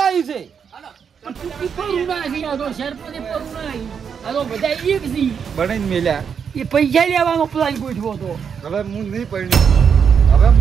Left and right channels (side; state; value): left; quieter; 6.9 dB